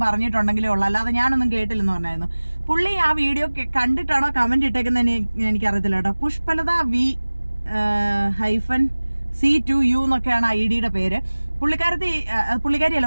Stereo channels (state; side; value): inverted; both; correlation -1.00